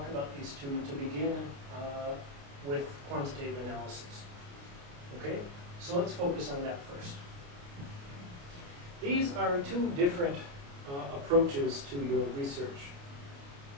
about these two to begin with quantitative analysis. Okay? So let's focus on that first. These are two different approaches to your research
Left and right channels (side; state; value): left; late; 29 ms